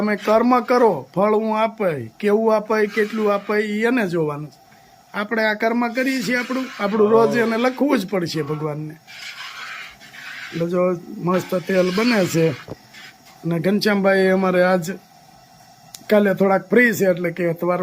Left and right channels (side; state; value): both; identical; correlation 1.00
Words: કર્મ કરો, ફળ હું આપાય, કેવું આપાય, કેટલું આપાય એને જોવાનું. આપણે આ કર્મ કરીએ છીએ આપણું રોજ એને લખવું જ પડશે ભગવાનને. એટલે જો મસ્ત તેલ બને છે. અને ઘનશ્યામભાઈ અમારે આજ કાલે થોડાક ફ્રી છે એટલે કે